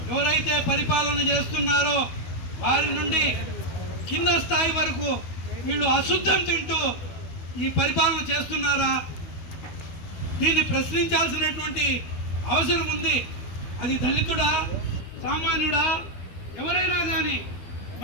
ఎవరైతే పరిపాలన చేస్తున్నారో వారి నుండి కింద స్థాయి వరకు వీళ్ళు అశుద్ధం తింటూ ఈ పరిపాలన చేస్తున్నారా? దీన్ని ప్రశ్నించాల్సినటువంటి అవసరం ఉంది. అది దళితుడా, సామాన్యుడా, ఎవరైనా కానీ,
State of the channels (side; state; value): right; late; 12 ms